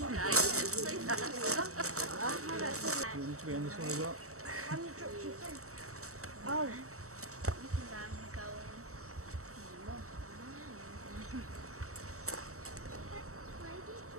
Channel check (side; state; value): left; late; 0.64 ms